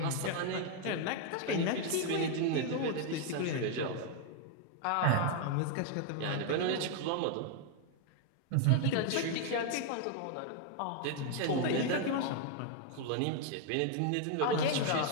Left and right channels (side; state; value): both; different; correlation 0.00